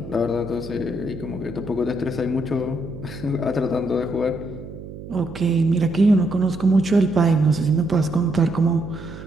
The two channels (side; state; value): right; noise; hum, 13 dB below the sound